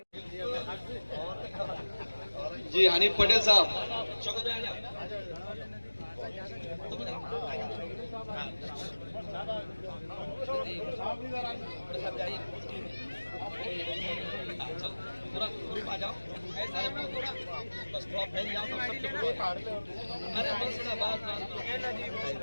जी हनी पटेल साहब पूरा ग्रुप आ जाओ, बस थोड़ा फैल जाओ तो सबके ग्रुप अरे बस ना बात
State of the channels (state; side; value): inverted; both; correlation -1.00